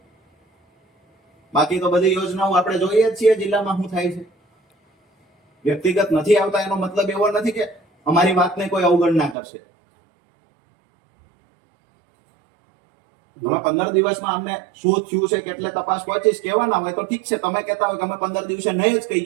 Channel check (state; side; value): drops out; left; at 9.3 s